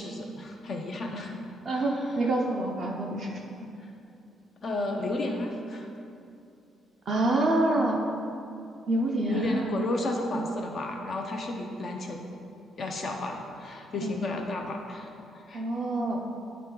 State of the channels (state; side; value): normal; both; correlation 0.73